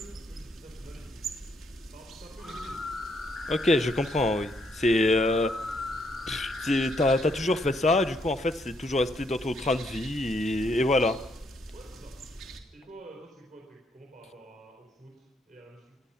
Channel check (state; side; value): normal; both; correlation 0.73